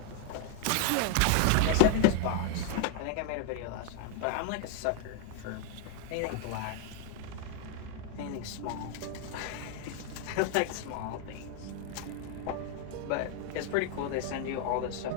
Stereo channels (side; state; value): both; different; correlation 0.00